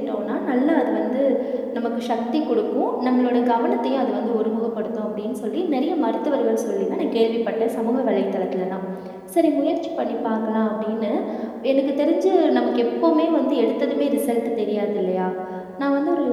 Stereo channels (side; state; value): both; identical; correlation 1.00